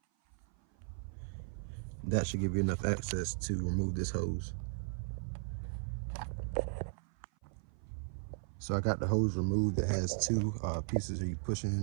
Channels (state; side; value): silent; left; 54 dB below the other